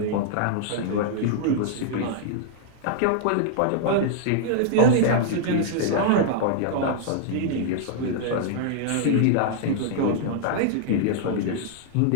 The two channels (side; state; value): both; different; correlation -0.01